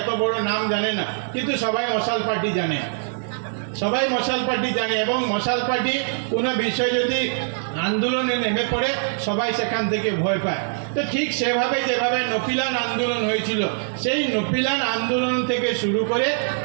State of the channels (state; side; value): silent; left; digital silence